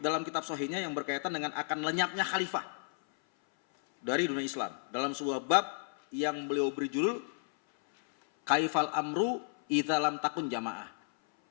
kitab Sahihnya yang berkaitan dengan akan lenyapnya khalifah dari dunia Islam. Dalam sebuah bab yang beliau beri judul Kaifal Amru Idza Lam Takun Jamaah.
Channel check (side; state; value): right; silent; 56 dB below the other